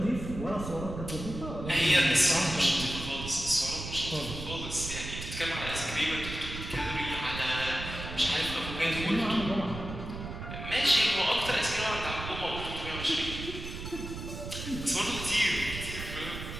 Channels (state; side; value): noise; right; rumble, 8 dB below the sound